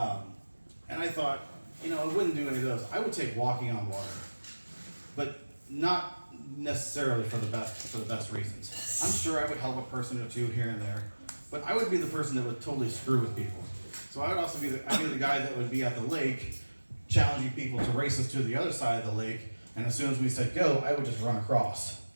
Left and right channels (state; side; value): inverted; both; correlation -1.00